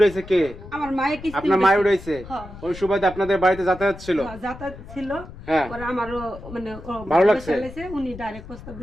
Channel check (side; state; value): left; noise; rumble, 15 dB below the sound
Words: কে? আমার মায়ে কিস্তি আপনার মায়ের রয়েছে। হ্যাঁ। ওই সুবাদে আপনাদের বাড়িতে যাতায়াত ছিল। যাতায়াত ছিল। হ্যাঁ। পরে আমারও মানে ভালো লাগছে? উনি ডাইরেক্ট প্রস্তাব